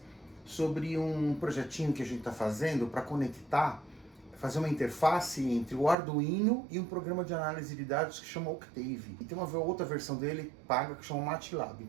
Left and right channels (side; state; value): left; drops out; at 6.0 s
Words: sobre um projetinho que a gente está fazendo para conectar, fazer uma interface entre o Arduino e um programa de análise de dados que chama Octave. E tem uma outra versão dele paga que chama MATLAB.